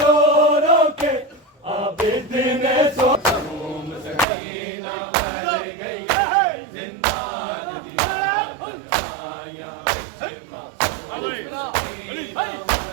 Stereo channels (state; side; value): drops out; left; at 4.2 s